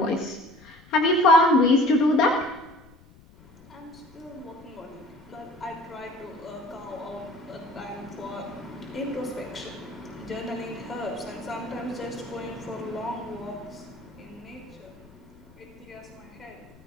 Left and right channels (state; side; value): noise; left; rumble, 24 dB below the sound